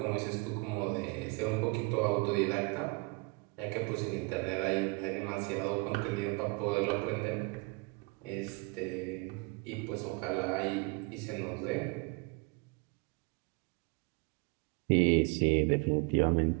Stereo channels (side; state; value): left; quieter; 28.7 dB